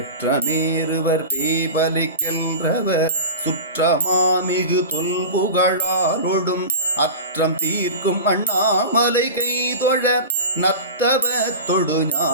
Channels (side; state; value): both; inverted; correlation -0.30